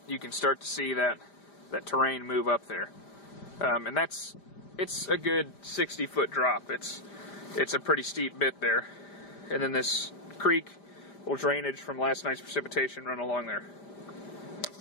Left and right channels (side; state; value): right; late; 5.0 ms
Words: you can start to see that terrain move up there. And it's a good 60-foot drop. It's a pretty steep bit there. And then this creek little drainage from last night's precipitation run along there.